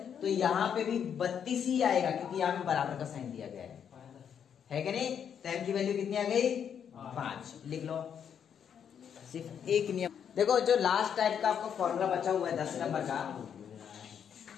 तो यहाँ पे भी 32 ही आएगा, क्योंकि यहाँ पे बराबर का साइन दिया गया है कि नहीं? तो m की वैल्यू कितनी आ गई? 5। लिख लो। सिर्फ एक नियम देखो, जो लास्ट टाइप का आपको फॉर्मूला बचा हुआ है 10 नंबर का,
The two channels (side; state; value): right; quieter; 8.1 dB